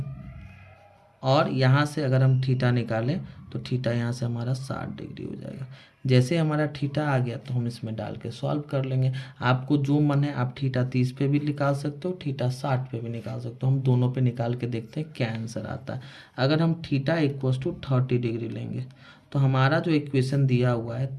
और यहाँ से अगर हम थीटा निकालें तो थीटा यहाँ से हमारा 60 डिग्री हो जाएगा। जैसे हमारा थीटा आ गया तो हम इसमें डाल के सॉल्व कर लेंगे। आपको जो मन है आप थीटा 30 पे भी निकाल सकते हो, थीटा 60 पे भी निकाल सकते हो। हम दोनों पे निकाल के देखते हैं क्या आंसर आता है। अगर हम थीटा इक्वस टू 30 डिग्री लेंगे तो हमारा जो इक्वेशन दिया हुआ है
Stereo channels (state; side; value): identical; both; correlation 1.00